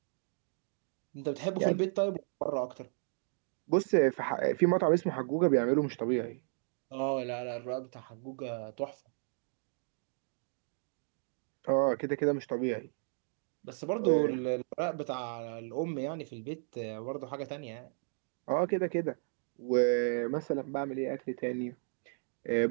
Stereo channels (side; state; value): left; silent; 55 dB below the other